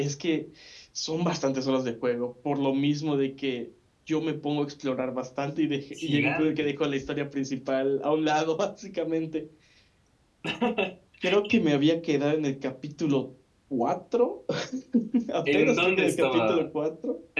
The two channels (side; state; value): both; identical; correlation 1.00